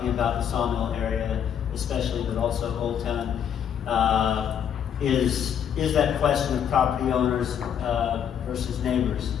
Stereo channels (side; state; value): right; quieter; 8.7 dB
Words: about the Sawmill area, especially, but also Old Town, is that question of property owners versus neighbors.